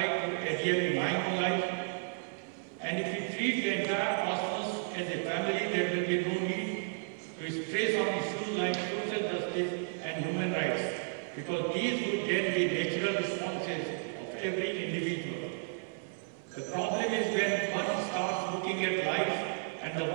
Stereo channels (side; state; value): left; silent; 56 dB below the other